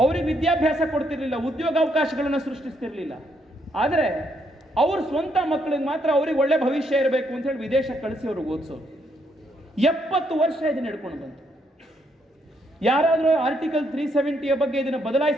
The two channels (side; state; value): both; normal; correlation 0.74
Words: ಅವ್ರಿಗೆ ವಿದ್ಯಾಭ್ಯಾಸ ಕೊಡ್ತಿರ್ಲಿಲ್ಲ, ಉದ್ಯೋಗಾವಕಾಶಗಳನ್ನು ಸೃಷ್ಟಿಸ್ತಿರ್ಲಿಲ್ಲ. ಆದರೆ ಅವ್ರ ಸ್ವಂತ ಮಕ್ಕಳಿಗೆ ಮಾತ್ರ ಅವ್ರಿಗೆ ಒಳ್ಳೆ ಭವಿಷ್ಯ ಇರಬೇಕು ಅಂತ ಹೇಳಿ ವಿದೇಶ ಕಳಿಸಿ ಅವ್ರಿಗೆ ಓದಿಸೋರು. 70 ವರ್ಷ ಇದನ್ನ ನಡ್ಕೊಂಡು ಬಂತು. ಯಾರಾದರೂ ಆರ್ಟಿಕಲ್ 370ಯ ಬಗ್ಗೆ ಇದನ್ನು